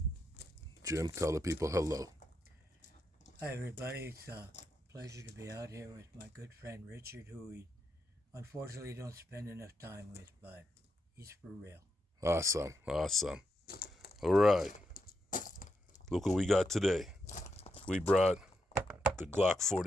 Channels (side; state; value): both; normal; correlation 0.82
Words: Jim, tell the people hello. Hi, everybody. It's a pleasure to be out here with my good friend Richard, who we unfortunately don't spend enough time with, but he's for real. Awesome. All right. Look what we got today. We brought the Glock